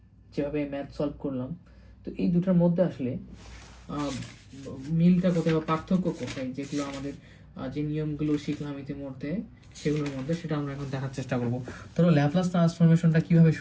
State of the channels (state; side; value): identical; both; correlation 1.00